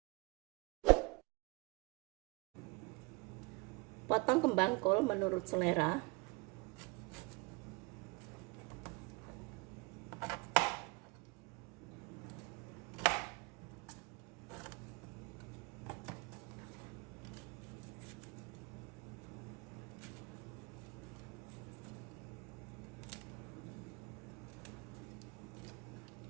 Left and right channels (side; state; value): left; quieter; 27.4 dB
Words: Potong kembang kol menurut selera.